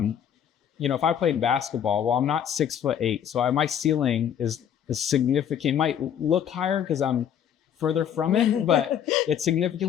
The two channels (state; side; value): quieter; right; 9.1 dB